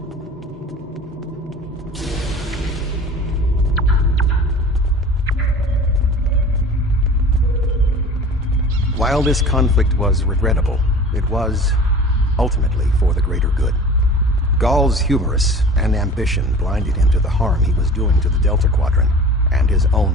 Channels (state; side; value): normal; both; correlation 0.41